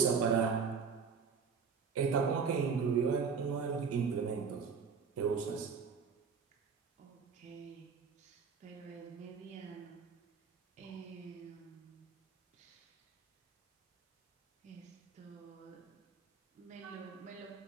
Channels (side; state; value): left; quieter; 5.8 dB